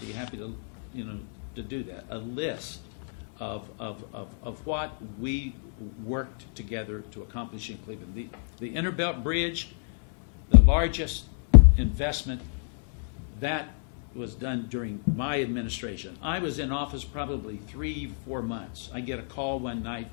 happy to do that, a list of what we worked together to accomplish in Cleveland. The Interbelt Bridge, the largest investment, that was done during my administration. I was in office probably 3-4 months. I get a call one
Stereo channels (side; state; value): right; silent; digital silence